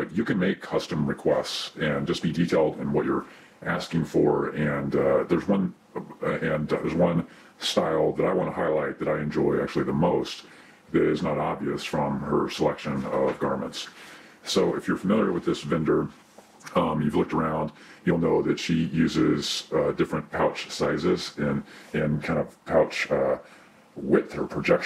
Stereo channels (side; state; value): both; identical; correlation 1.00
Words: you can make custom requests and just be detailed in what you're asking for. And there's one style that I want to highlight that I enjoy actually the most that is not obvious from her selection of garments. So if you're familiar with this vendor, you've looked around, you'll know that she uses different pouch sizes and kind of pouch width or